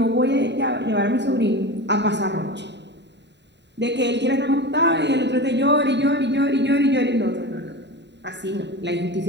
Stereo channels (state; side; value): late; left; 0.51 ms